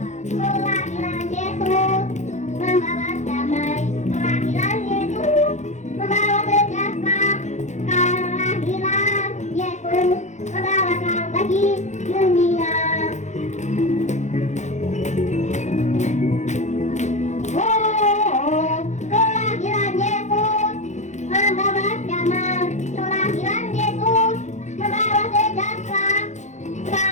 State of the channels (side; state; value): right; late; 0.34 ms